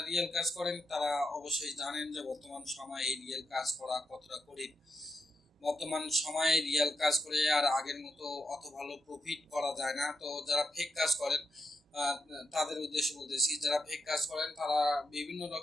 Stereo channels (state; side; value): normal; both; correlation 0.84